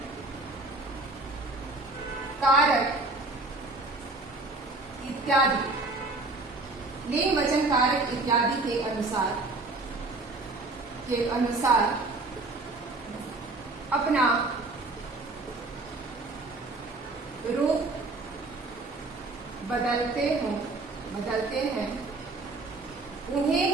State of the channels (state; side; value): quieter; left; 3.2 dB